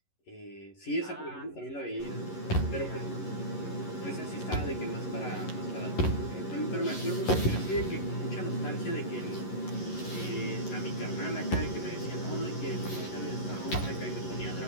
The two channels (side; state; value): right; late; 11 ms